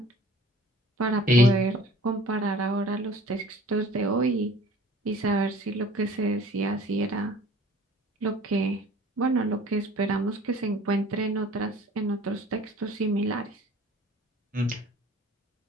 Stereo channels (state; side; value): normal; both; correlation 0.48